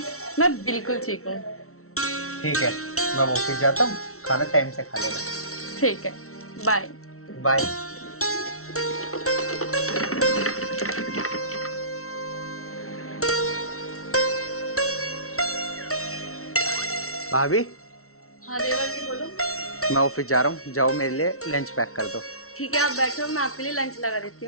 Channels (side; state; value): right; late; 0.63 ms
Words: मैं बिल्कुल ठीक हूँ। ठीक है, मैं ऑफिस जाता हूँ, खाना टाइम से खा लेना। ठीक है, बाय। बाय। भाभी, हाँ देवर जी बोलो। मैं ऑफिस जा रहा हूँ, जाओ मेरे लिए लंच पैक कर दो। ठीक है, आप बैठो, मैं आपके लिए लंच लगा देती